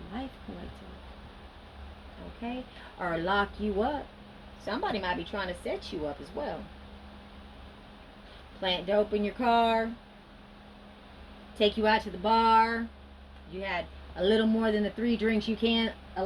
life, collective. Okay? Or lock you up. Somebody might be trying to set you up as well. Plant dope in your car. Take you out to the bar. You had a little more than the 3 drinks you can't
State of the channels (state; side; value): identical; both; correlation 1.00